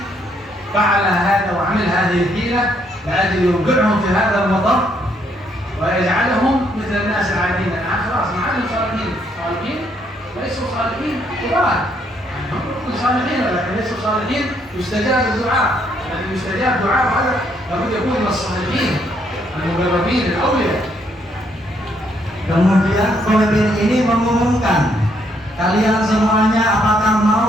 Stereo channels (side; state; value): both; normal; correlation 0.71